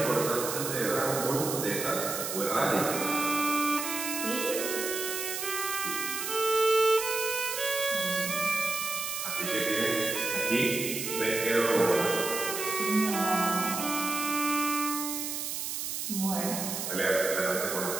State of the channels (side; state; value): right; noise; hiss, 4 dB below the sound